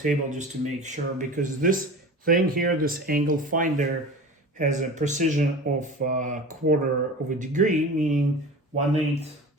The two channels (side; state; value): both; normal; correlation 0.35